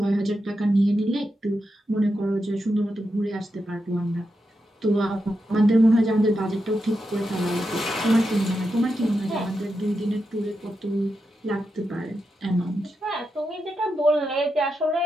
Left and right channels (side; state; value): both; normal; correlation 0.87